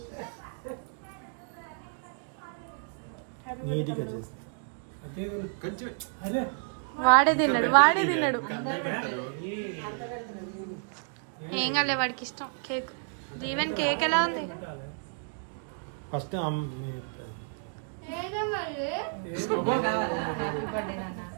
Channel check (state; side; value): silent; left; 57 dB below the other